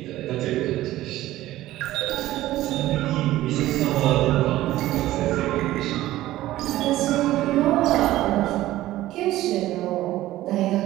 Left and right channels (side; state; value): left; quieter; 15.4 dB